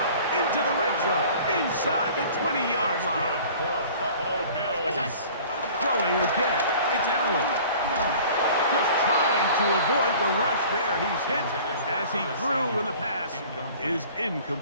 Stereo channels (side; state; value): both; inverted; correlation -0.46